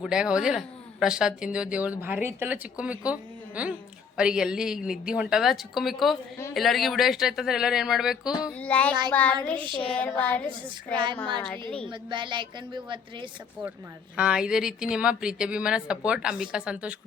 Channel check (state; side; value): quieter; right; 6.2 dB